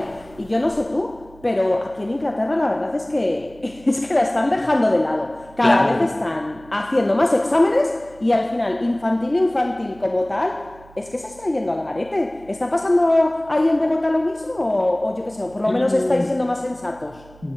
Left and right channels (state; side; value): noise; right; hum, 24 dB below the sound